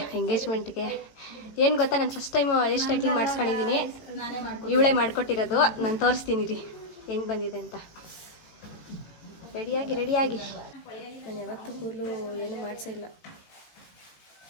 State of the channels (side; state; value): right; late; 18 ms